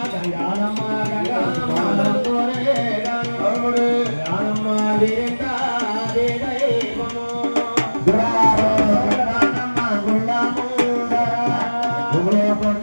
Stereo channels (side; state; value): both; inverted; correlation -1.00